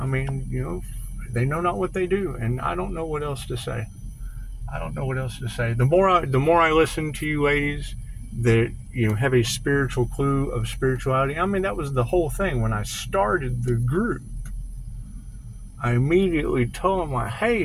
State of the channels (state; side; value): identical; both; correlation 1.00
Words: mean, you know, they know not what they do, and I don't know what else to say. I don't know what else to say. The more I listen to you ladies that, you know, have a spiritual clue of spirituality. I mean, that was the whole thing when I started the group. I immediately told them, like,